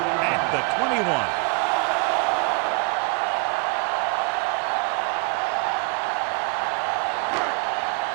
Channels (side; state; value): left; quieter; 32.2 dB